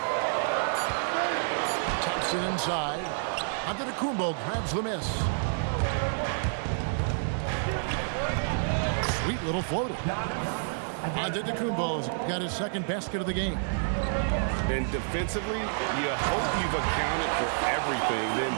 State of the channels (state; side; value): silent; left; digital silence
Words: Thompson inside. Antetokounmpo grabs the miss. Sweet little floater. Antetokounmpo's got his second basket of the game. And defensively, you hope you've accounted for everything. Then